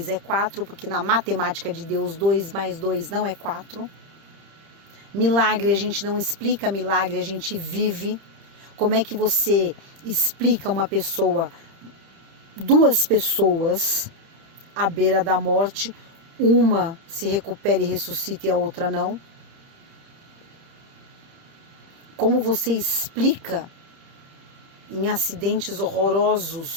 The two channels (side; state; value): left; late; 30 ms